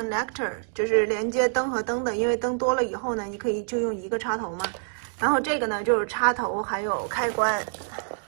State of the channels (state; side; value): silent; left; digital silence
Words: 就是连接灯和灯的，因为灯多了以后呢，你可以就用一个插头嘛。然后这个呢就是插头还有开关。